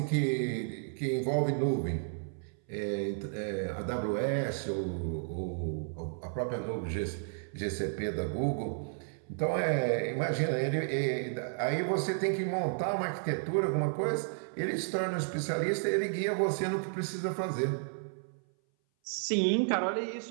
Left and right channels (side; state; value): left; silent; 56 dB below the other